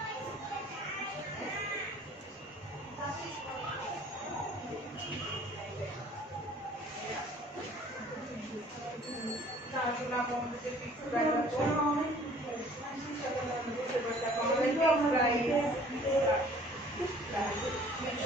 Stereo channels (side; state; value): both; normal; correlation 0.53